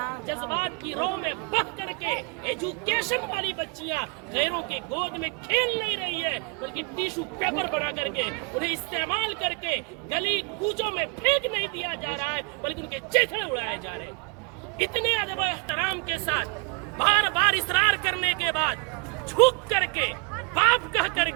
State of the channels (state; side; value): quieter; left; 32.7 dB